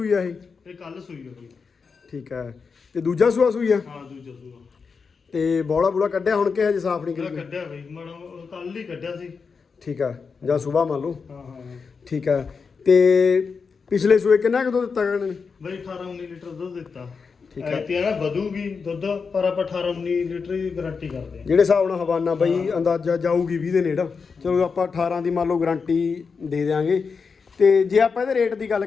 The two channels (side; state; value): right; quieter; 5.3 dB